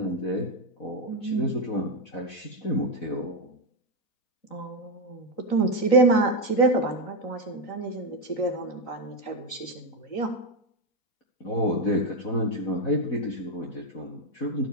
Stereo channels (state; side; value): late; right; 3.9 ms